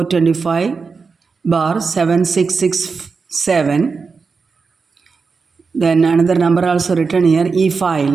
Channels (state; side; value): quieter; left; 4.9 dB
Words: Then another number also written here, e-file